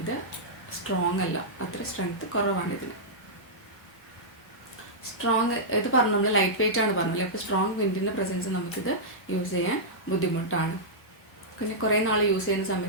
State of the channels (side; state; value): both; normal; correlation -0.11